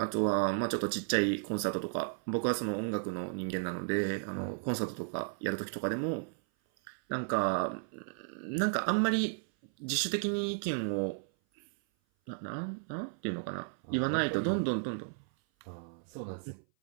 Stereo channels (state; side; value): silent; left; 55 dB below the other